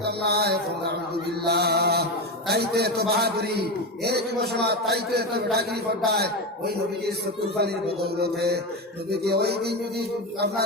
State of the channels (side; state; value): both; normal; correlation 0.16